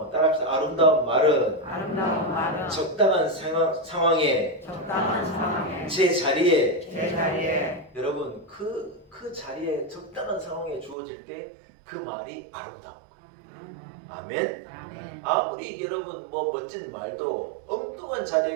따라합시다. 아름다운 말은 적당한 상황에 제 자리에 여러분 그 자리에 적당한 상황에 주어질 때 그 말이 아름다운 거예요. 아멘. 아무리 여러분 뭐 멋진 말도 엉뚱한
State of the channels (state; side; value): drops out; left; at 11.0 s